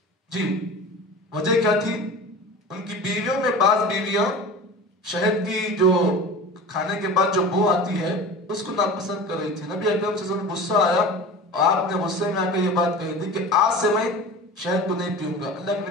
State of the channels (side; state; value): both; normal; correlation 0.35